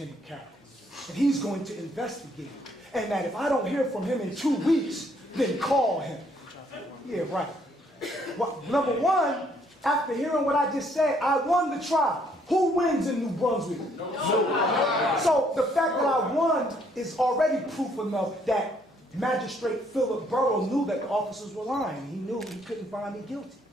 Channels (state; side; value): normal; both; correlation 0.67